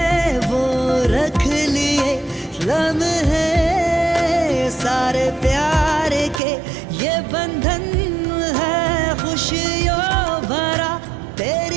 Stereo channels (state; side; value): drops out; left; at 6.4 s